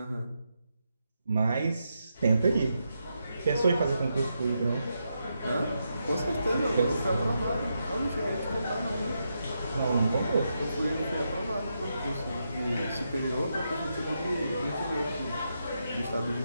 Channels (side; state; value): both; inverted; correlation -0.84